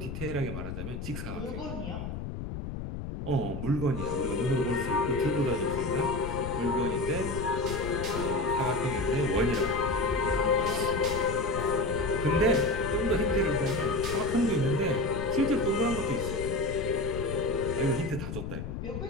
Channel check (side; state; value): left; noise; rumble, 6 dB below the sound